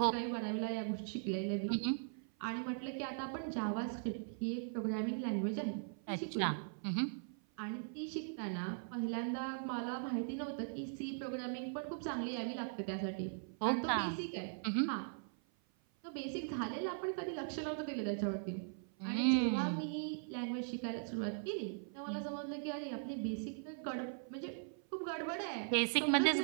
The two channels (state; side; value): silent; left; 51 dB below the other